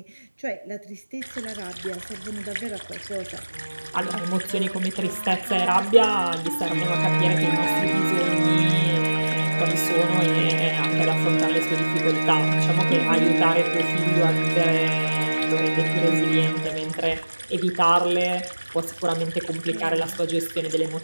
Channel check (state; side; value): inverted; both; correlation -1.00